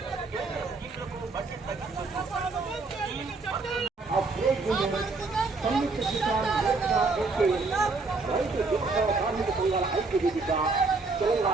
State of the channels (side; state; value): left; quieter; 3.9 dB